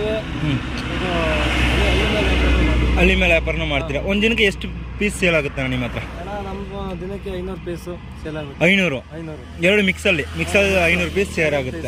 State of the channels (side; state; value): both; identical; correlation 1.00